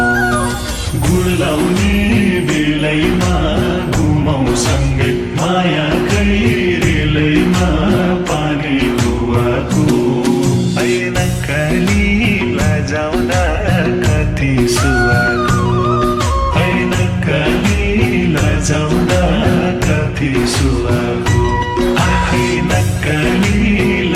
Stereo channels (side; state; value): both; identical; correlation 1.00